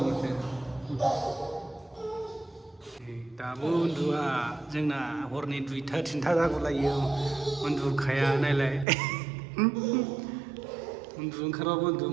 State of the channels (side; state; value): left; drops out; at 8.8 s